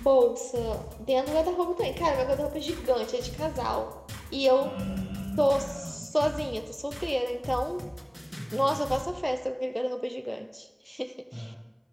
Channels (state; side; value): identical; both; correlation 1.00